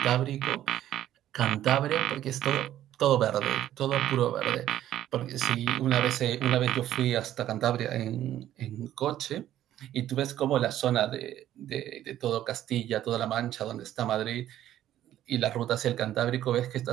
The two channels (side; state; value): left; quieter; 12.4 dB